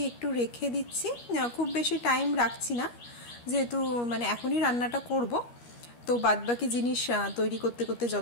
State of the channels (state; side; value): late; right; 13 ms